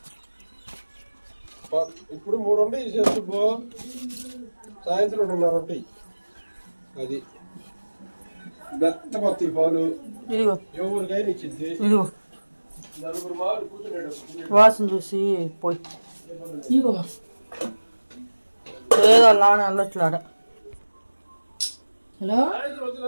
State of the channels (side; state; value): both; inverted; correlation -1.00